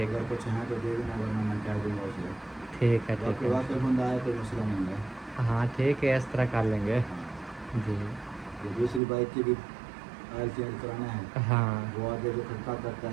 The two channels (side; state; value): left; drops out; at 9.0 s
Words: अगर है कुछ है तो दे देना, वरना मैं कह दूँगा उसे। ठीक है ठीक बाकी है। वाकई बंदा आए तो मसला नहीं है। हाँ ठीक है इस तरह कर लेंगे। जी ये दूसरी बाइक की भी ऑयल चेंज कराना है, हाँ वो आगे जो खटका करता